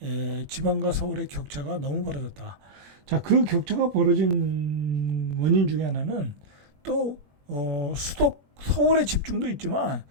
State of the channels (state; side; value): late; left; 21 ms